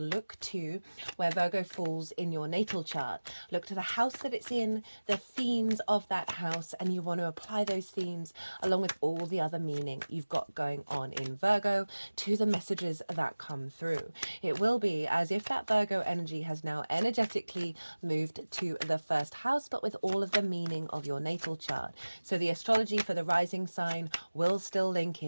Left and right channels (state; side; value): inverted; both; correlation -1.00